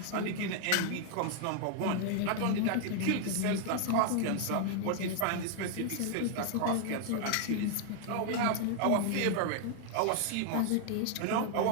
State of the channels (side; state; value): both; different; correlation 0.00